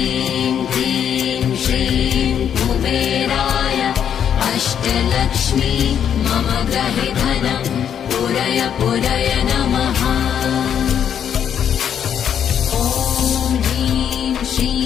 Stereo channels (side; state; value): right; quieter; 8.8 dB